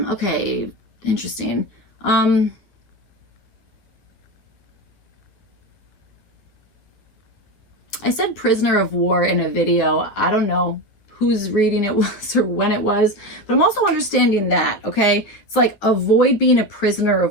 Interesting. I said prisoner of war in a video. I don't know whose reading it was or when it was, but I'm also understanding that, okay? It's like avoid being a prisoner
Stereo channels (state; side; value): late; right; 9.5 ms